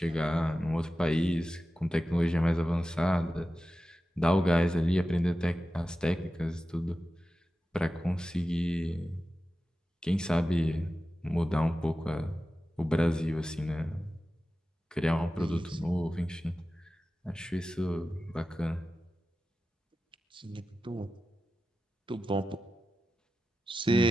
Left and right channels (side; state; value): both; normal; correlation 0.93